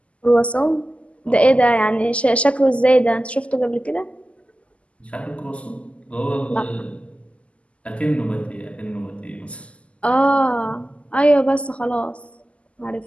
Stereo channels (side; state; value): right; late; 0.060 ms